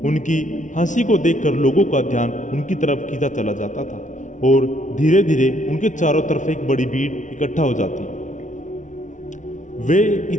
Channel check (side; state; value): right; late; 0.37 ms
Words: उनकी हंसी को देखकर लोगों का ध्यान उनकी तरफ खींचा चला जाता था और धीरे धीरे उनके चारों तरफ एक बड़ी भीड़ इकट्ठा हो जाती। वे